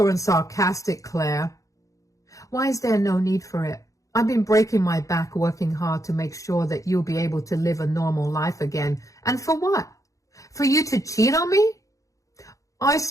and sarcastic, Claire. Why is there no need for it? I've been breaking my back working hard to make sure that you'll be able to live a normal life again. And for what? For you to cheat on me? I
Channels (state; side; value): late; right; 0.16 ms